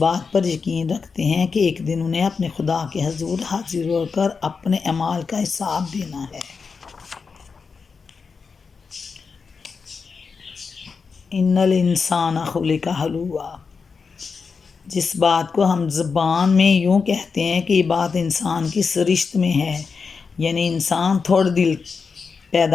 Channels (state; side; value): quieter; right; 5.2 dB